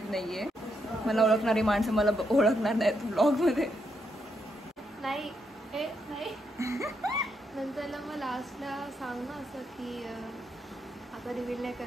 नाही आहे. मला ओळखणारी माणसं मला ओळखणार नाहीत व्लॉगमध्ये. नाही नंतरला मग लास्टला सांग ना असं की आता रिव्हील नाही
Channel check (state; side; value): normal; both; correlation 0.79